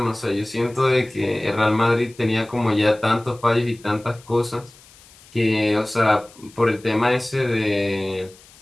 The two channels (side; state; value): left; noise; hiss, 25 dB below the sound